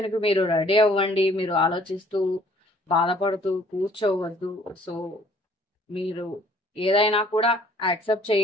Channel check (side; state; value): both; normal; correlation 0.58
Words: మీరు రెడీ అవ్వండి. మీరు ఆలోచిస్తూ బాధపడుతూ కూర్చోవద్దు. సో మీరు ఏదైనా కూడా యాక్సెప్ట్